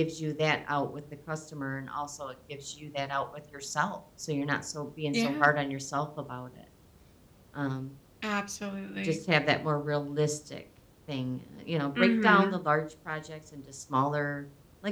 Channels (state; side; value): identical; both; correlation 1.00